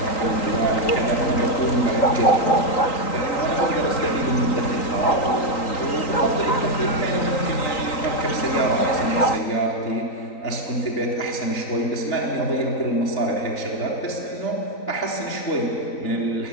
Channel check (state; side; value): late; right; 3.8 ms